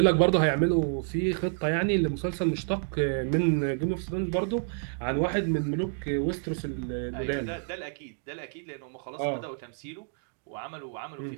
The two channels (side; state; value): left; silent; 59 dB below the other